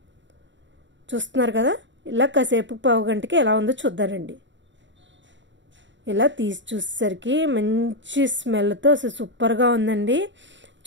చూస్తున్నారు కదా, ఇలా కాసేపు పావు గంటకి ఎలా ఉందో చూద్దానండి. ఇలా తీసి చూసేసరికి మంచి స్మెల్తో అసలు సూపర్గా ఉందండి.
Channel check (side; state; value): left; late; 0.54 ms